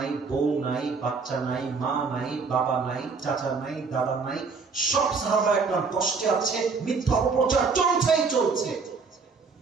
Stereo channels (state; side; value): quieter; left; 4.8 dB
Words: বউ নাই, বাচ্চা নাই, মা নাই, বাবা নাই, চাচা নাই, দাদা নাই, সব সাহাবা একদম কষ্টে আছে, মিথ্যা অপপ্রচার চলছেই চলছে।